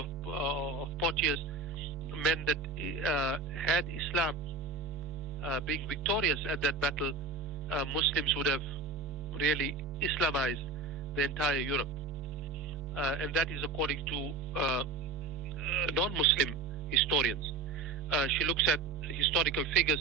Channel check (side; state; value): left; quieter; 3.9 dB